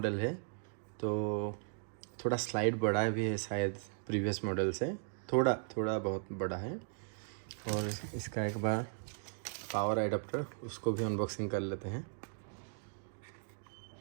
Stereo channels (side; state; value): left; silent; digital silence